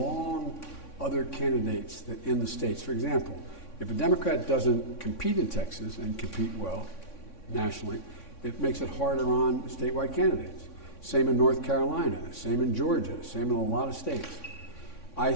other candidates that in the states. For example, If a Democrat doesn't compete in Texas and compete well nationally, it makes it harder on statewide candidates. Same in North Carolina, same in Georgia, same in a lot of states. I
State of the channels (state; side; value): late; right; 3.6 ms